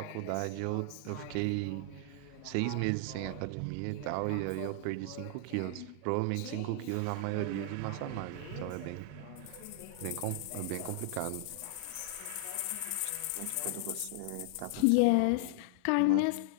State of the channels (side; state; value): both; different; correlation 0.00